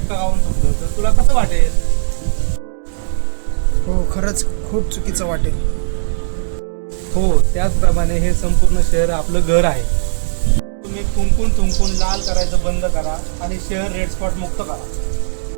खाऊन थुकलं तर तुला कसं वाटेल? हो, खरंच खूप चुकीचं वाटेल. हो, त्याचप्रमाणे हे संपूर्ण शहर आपलं घर आहे. तुम्ही थुंकून लाल करायचं बंद करा आणि शहर रेड स्पॉट मुक्त करा.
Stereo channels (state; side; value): silent; left; digital silence